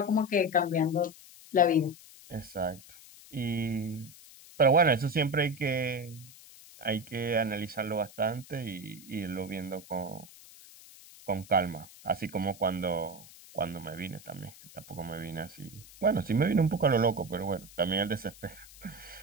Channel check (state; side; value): noise; left; hiss, 20 dB below the sound